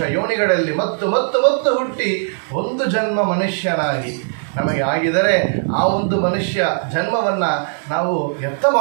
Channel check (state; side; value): silent; left; digital silence